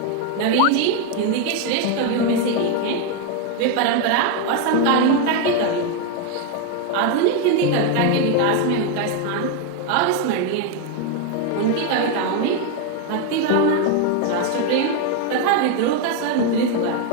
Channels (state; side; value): different; both; correlation 0.01